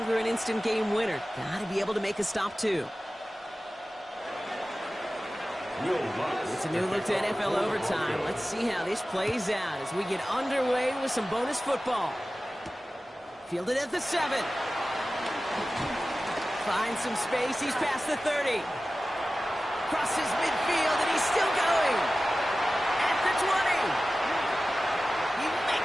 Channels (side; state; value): both; normal; correlation 0.95